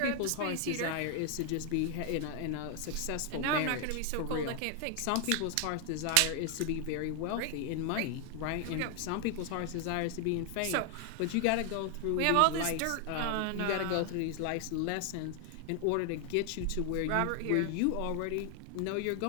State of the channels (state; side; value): different; both; correlation 0.00